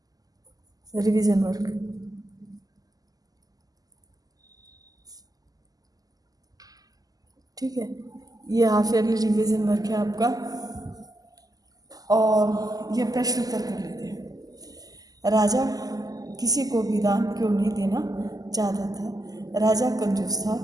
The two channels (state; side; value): late; left; 0.18 ms